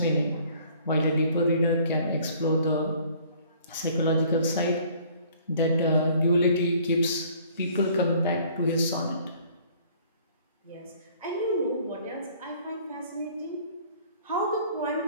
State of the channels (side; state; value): both; inverted; correlation -0.55